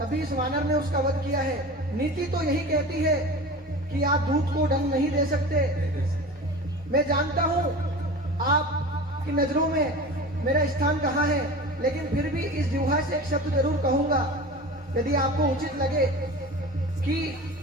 इस वानर ने उसका वध किया है। नीति तो यही कहती है कि आप दूत को दंड नहीं दे सकते। मैं जानता हूँ आपकी नजरों में मेरा स्थान कहाँ है, लेकिन फिर भी इस जिह्वा से एक शब्द जरूर कहूंगा, यदि आपको उचित लगे कि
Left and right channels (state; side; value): normal; both; correlation 0.34